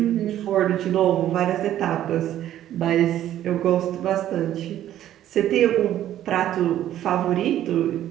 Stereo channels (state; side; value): quieter; left; 12.1 dB